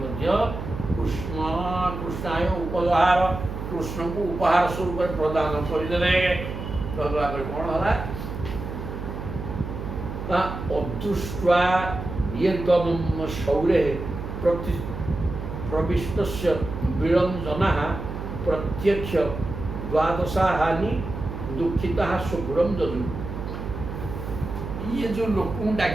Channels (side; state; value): right; noise; hum, 7 dB below the sound